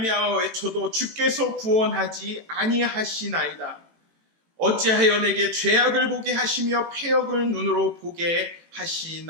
외쳐도 주께서 구원하지 아니하시나이다. 어찌하여 내게 죄악을 보게 하시며 패역을 눈으로 보게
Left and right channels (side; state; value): left; late; 18 ms